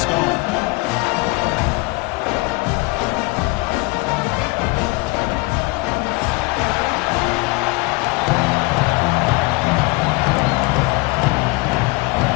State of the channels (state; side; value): quieter; right; 24.8 dB